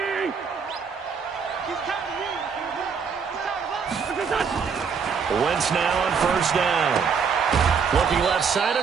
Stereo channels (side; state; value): left; quieter; 6.1 dB